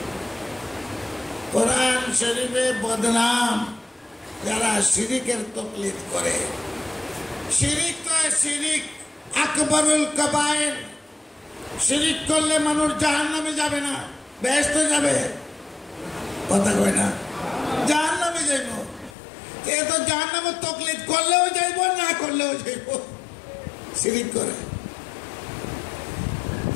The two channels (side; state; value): right; drops out; at 19.2 s